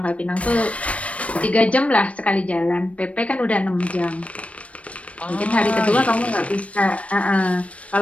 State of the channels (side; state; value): right; late; 0.064 ms